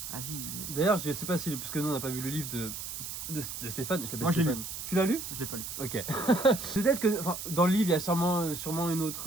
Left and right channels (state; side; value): noise; right; hiss, 7 dB below the sound